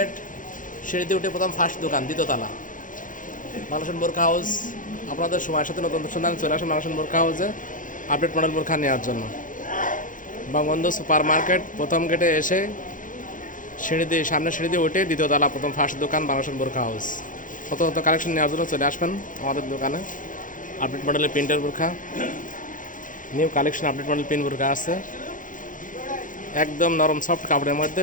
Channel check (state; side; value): late; right; 0.38 ms